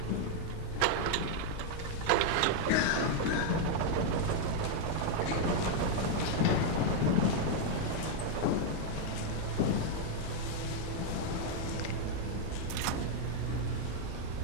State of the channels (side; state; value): both; different; correlation 0.00